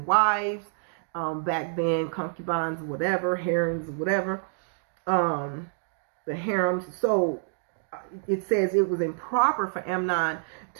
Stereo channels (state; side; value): silent; left; digital silence